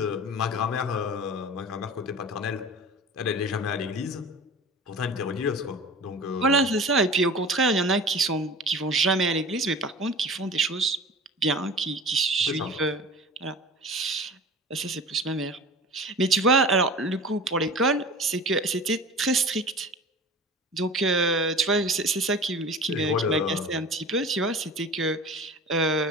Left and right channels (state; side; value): normal; both; correlation 0.37